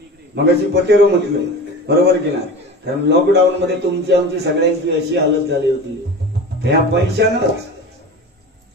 मग अशी पटेरो म्हटलं बरोबर की नाही. कारण लॉकडाऊन मध्ये तुमची आमची सगळ्यांची अशी हालत झाली होती ह्या पैशानंच.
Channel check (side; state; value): both; normal; correlation 0.33